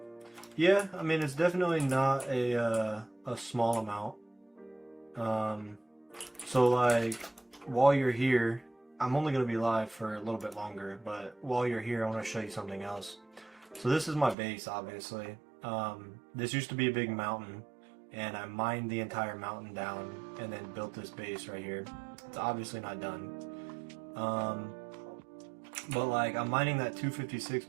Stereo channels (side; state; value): left; drops out; at 14.4 s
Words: Yeah, I mean, it's definitely not a small amount. So like, while you're here, I'm only going to be live for a little bit longer, but while you're here, I want to show you something else. So this is my base, obviously. This used to be a big mountain, and I mined the entire mountain down and then built this base right here. It's obviously not done. But like, I'm mining that 256